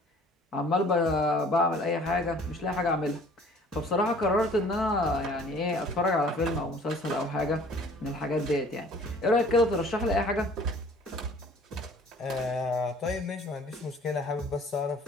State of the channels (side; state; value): both; normal; correlation 0.52